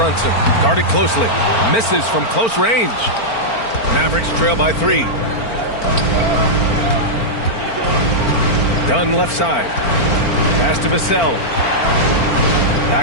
Guarded closely. Misses from close range. Mavericks trail by 3. Dunn left side. Pass to Vassell.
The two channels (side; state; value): right; late; 4.4 ms